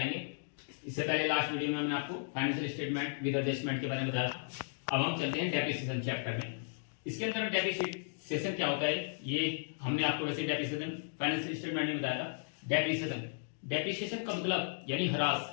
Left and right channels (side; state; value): right; silent; digital silence